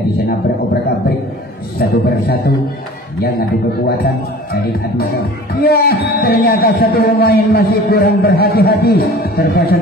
di sana beroprak-abrik satu persatu yang adu kekuatan dari adu. Ya, ternyata satu pemain masih kurang berhati-hati, terpaksa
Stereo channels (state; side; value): normal; both; correlation 0.43